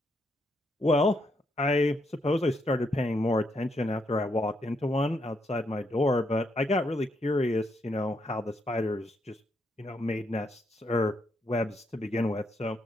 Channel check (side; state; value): both; normal; correlation 0.77